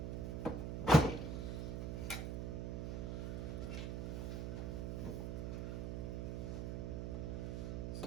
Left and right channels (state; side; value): noise; right; hum, 2 dB below the sound